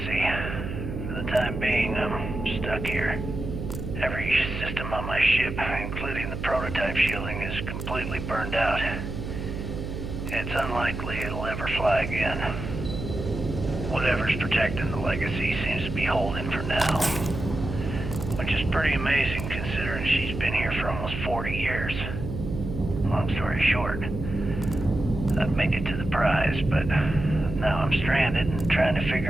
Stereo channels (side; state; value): right; noise; hum, 6 dB below the sound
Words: For the time being, I'm stuck here. Every system on my ship, including the prototype shielding, is completely burned out. It's unlikely it'll ever fly again. Whatever's protecting the Legacy seems to be holding for now. Which is pretty amazing considering she's been here for almost 40 years. Long story short, I've made it to the prize, but now I'm stranded and trying to